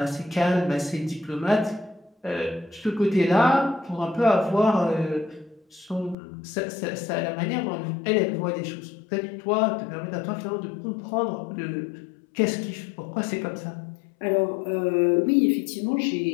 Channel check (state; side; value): drops out; right; at 6.2 s